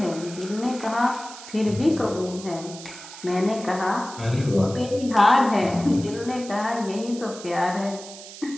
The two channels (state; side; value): noise; right; hiss, 15 dB below the sound